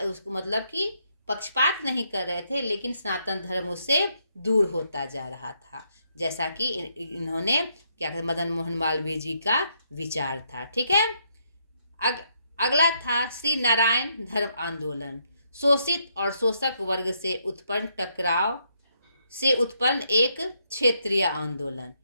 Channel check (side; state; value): both; inverted; correlation -0.75